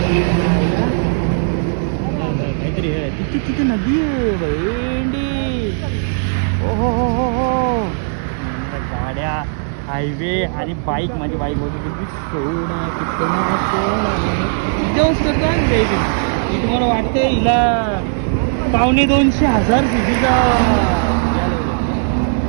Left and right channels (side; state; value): left; silent; digital silence